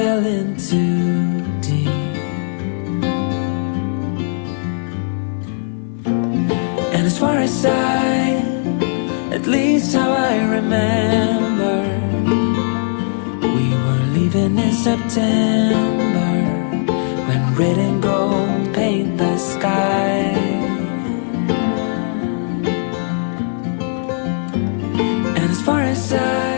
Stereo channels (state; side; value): silent; right; 67 dB below the other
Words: in too deep. And as far as at least how I remember, we were leaving in September, when red and gold